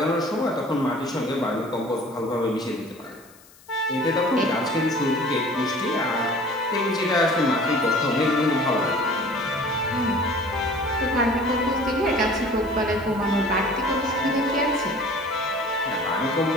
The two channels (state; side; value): noise; left; hiss, 25 dB below the sound